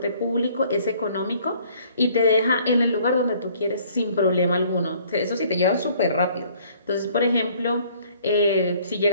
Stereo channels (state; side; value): inverted; both; correlation -0.58